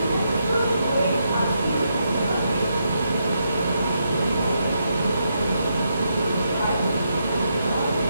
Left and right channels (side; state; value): both; inverted; correlation -0.80